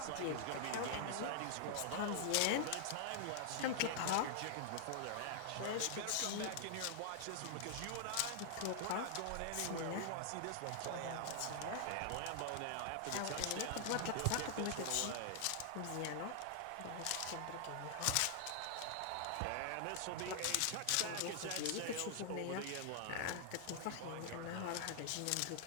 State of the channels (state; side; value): different; both; correlation -0.01